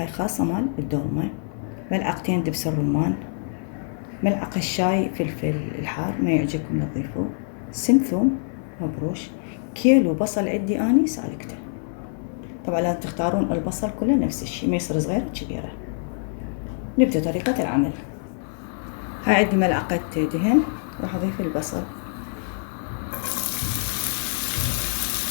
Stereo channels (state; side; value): silent; right; 56 dB below the other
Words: خاصة مال الدولمة، ملعقتين دبس الرمان، ملعقة شاي فلفل الحار ما يعجبكم لا تضيفوه، سن ثوم مبروش، كيلو بصل عندي اني سالكته. طبعا لازم تختارون البصل كله نفس الشيء، ما يصير صغير كبيرة. نبدأ طريقة العمل. هاي عندي ملعقة دهن، راح اضيف البصل،